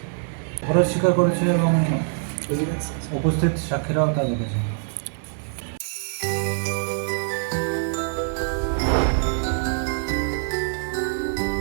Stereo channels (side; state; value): left; silent; 62 dB below the other